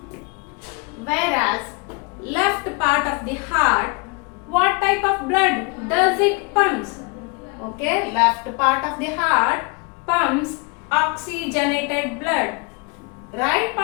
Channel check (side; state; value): right; quieter; 30.2 dB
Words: Whereas left part of the heart, what type of blood does it pumps? Okay, left part of the heart pumps oxygenated blood. Right